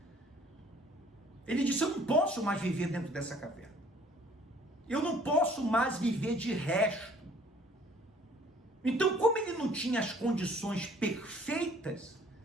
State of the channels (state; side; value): normal; both; correlation 0.56